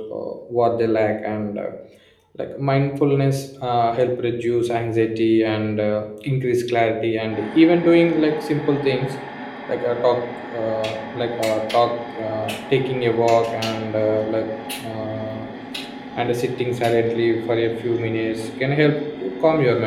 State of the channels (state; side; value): identical; both; correlation 1.00